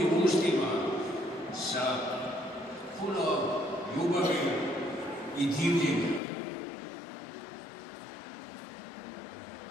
ustima, sa puno ljubavi i divljenja.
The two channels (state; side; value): drops out; right; at 6.2 s